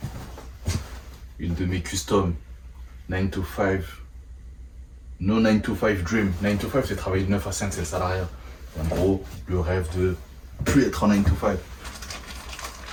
Une de mes customs, 9 to 5. No 9 to 5 dream. 9 to 5, c'est travailler de 9 à 5, c'est le salariat. En gros, le rêve de plus être en 9 to 5.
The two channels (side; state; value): both; identical; correlation 1.00